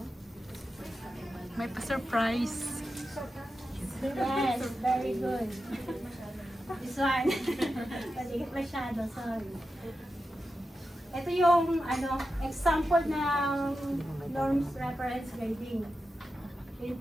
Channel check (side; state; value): both; normal; correlation 0.90